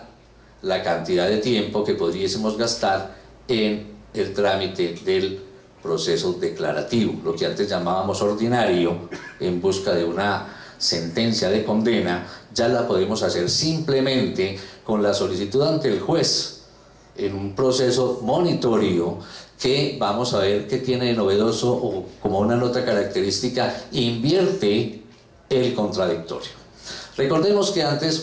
la cantidad de tiempo que podríamos gastar en el trámite del proceso declarativo, lo que antes llamábamos ordinario, en busca de una sentencia de condena. Ya la podemos hacer simplemente con la solicitud ante el juez en un proceso monitorio que vamos a ver que tiene de novedoso, o como una nota característica, invierte el contradictorio. Recordemos que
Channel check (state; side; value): identical; both; correlation 1.00